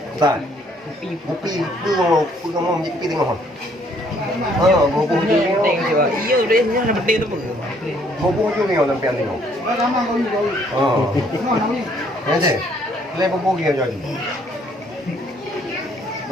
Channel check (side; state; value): both; normal; correlation 0.64